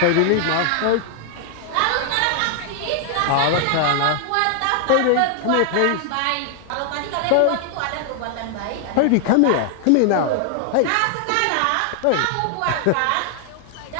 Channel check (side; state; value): both; different; correlation 0.00